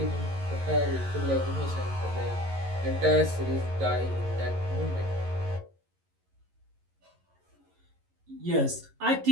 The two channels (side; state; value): left; late; 11 ms